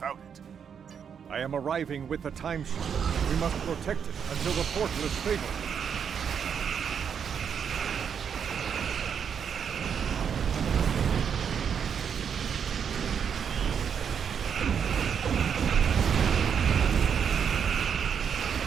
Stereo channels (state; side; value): quieter; left; 7.4 dB